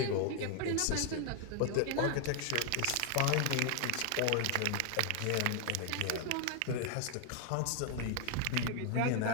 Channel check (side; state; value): both; different; correlation 0.00